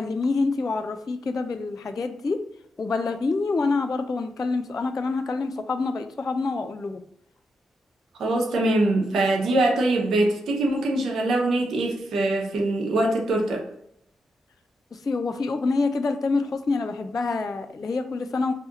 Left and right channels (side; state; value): both; normal; correlation 0.84